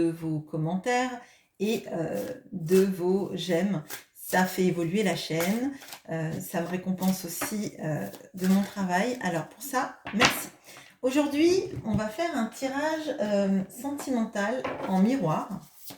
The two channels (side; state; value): both; identical; correlation 1.00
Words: vos commentaires et de vos j'aime. Ça fait évoluer la chaîne, ça me récompense aussi de mon travail. Alors pour ça, merci. Aujourd'hui, on va faire un tirage sentimental en miroir